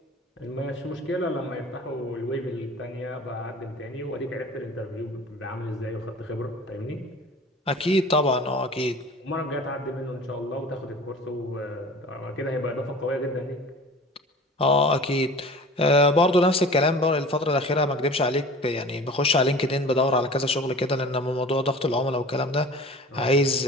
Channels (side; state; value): both; normal; correlation 0.41